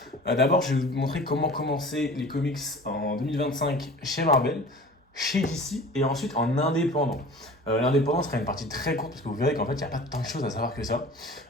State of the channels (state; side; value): normal; both; correlation 0.41